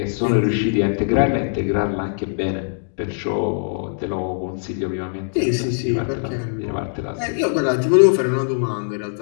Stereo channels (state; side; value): silent; right; digital silence